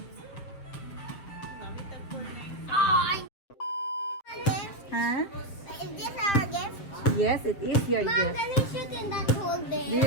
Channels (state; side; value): late; right; 7.5 ms